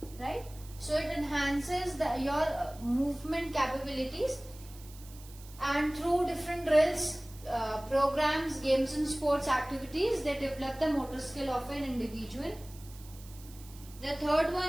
Right? So it enhances your movement capabilities, and through different drills, programs, games and sports activities, they develop the motor skill of an individual. The third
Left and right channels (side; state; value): right; noise; hiss, 20 dB below the sound